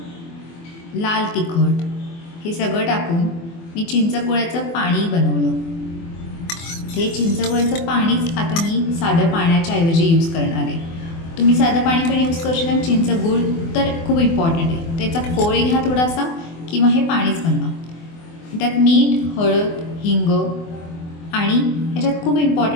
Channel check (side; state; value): right; late; 24 ms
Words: लाल तिखट हे सगळं टाकून मी चिंचगुळाचं पाणी बनवलं. ते चिंचगुळाचं पाणीच आता मी साधं पाण्याच्या ऐवजी यूज करणार आहे. तुम्ही साधं पाणी पण यूज करू शकता. चिंचगूळ तर खूप इम्पॉर्टंट आहे. त्याचा कोळ घ्या थोडासा किंवा हे पाणीच बनवा. त्यात मीठ, हळद, हिंग आणि ह्याच्यात खूप